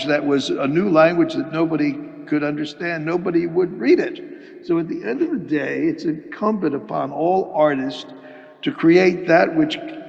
that was a new language that nobody could understand, nobody would read it. So at the end of the day, it's incumbent upon all artists to create that which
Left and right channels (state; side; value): identical; both; correlation 1.00